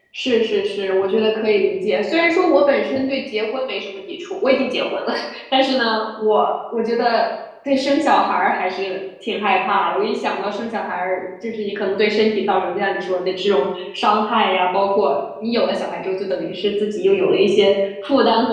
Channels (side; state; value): both; identical; correlation 1.00